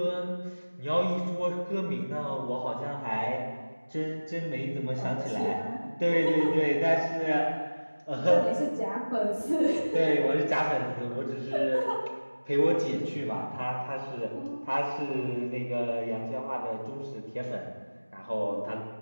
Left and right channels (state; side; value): inverted; both; correlation -1.00